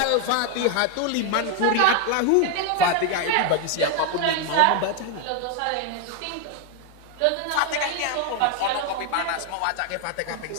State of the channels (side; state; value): both; different; correlation 0.01